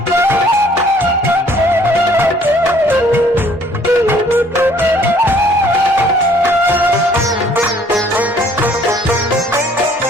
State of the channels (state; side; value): normal; both; correlation 0.59